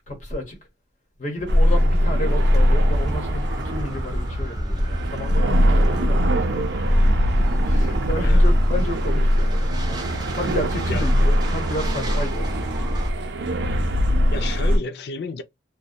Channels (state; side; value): normal; both; correlation 0.87